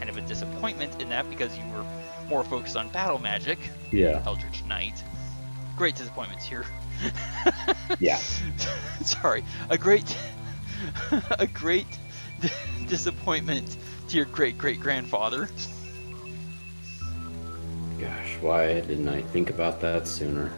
of a disappointment in that because you were more focused on battle magic, Yeah. Eldritch Knight. Great disappointments here. Yeah. Sorry, a great disappointment to your great-great-grandfather. Gosh, why didn't I think about that sooner?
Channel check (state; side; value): inverted; both; correlation -1.00